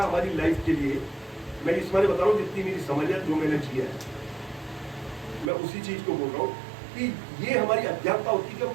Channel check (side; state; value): left; drops out; at 5.5 s